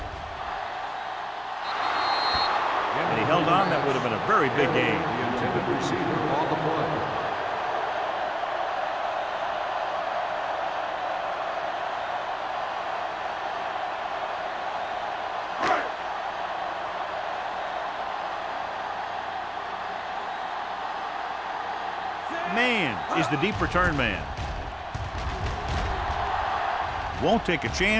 And he held on. That would have been a very big game. The intended receiver on the play. Man is the deep return man. Won't take a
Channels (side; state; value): both; identical; correlation 1.00